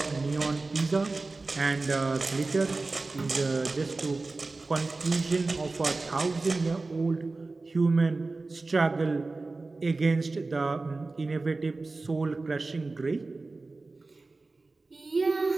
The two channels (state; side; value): quieter; left; 3.5 dB